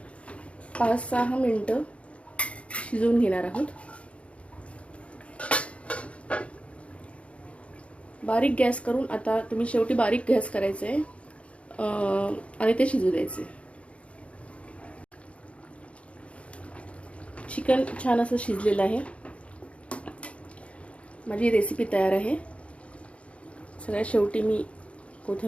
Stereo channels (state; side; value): late; right; 0.062 ms